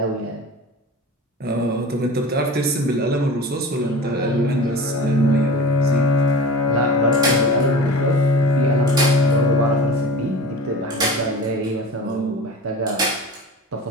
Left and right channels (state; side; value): normal; both; correlation 0.36